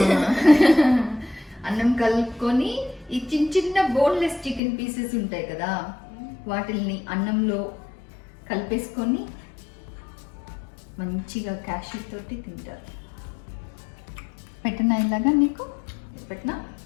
అన్నం కలుపుకొని ఈ చిన్న బోన్లెస్ చికెన్ పీసెస్ ఉంటాయి కదా, వాటిల్ని అన్నంలో కలిపేసుకొని మంచిగా క్యాష్యూ తోటి తింటారు. పెట్టనా ఇలాగా? నీకు పెట్టనా?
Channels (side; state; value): right; drops out; at 4.6 s